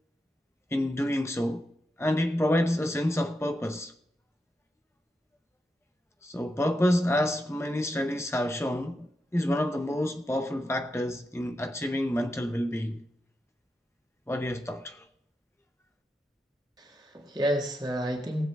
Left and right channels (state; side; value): normal; both; correlation 0.86